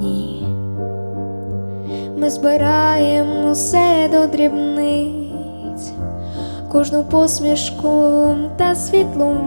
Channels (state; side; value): inverted; both; correlation -1.00